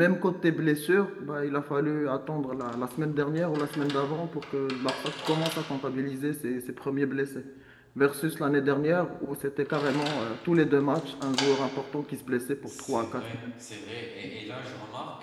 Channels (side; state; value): both; identical; correlation 1.00